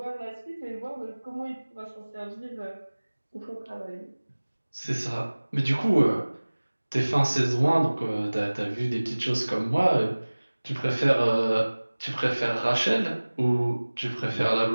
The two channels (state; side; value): inverted; both; correlation -1.00